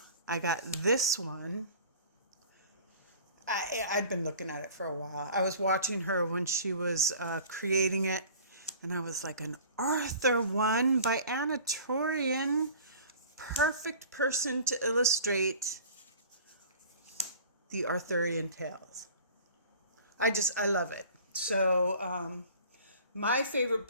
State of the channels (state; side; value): inverted; both; correlation -0.45